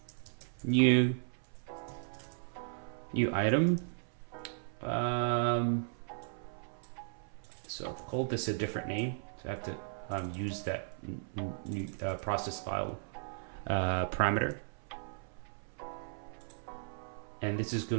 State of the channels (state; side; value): silent; left; 54 dB below the other